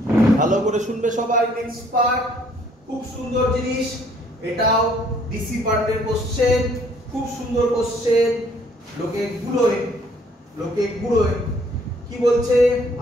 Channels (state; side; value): normal; both; correlation 0.62